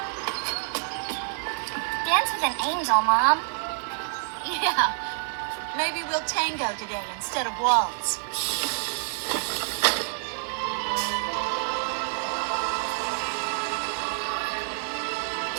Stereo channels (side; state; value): left; silent; 60 dB below the other